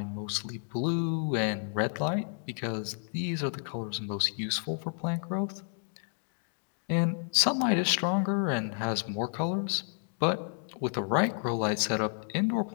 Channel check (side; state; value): right; silent; 57 dB below the other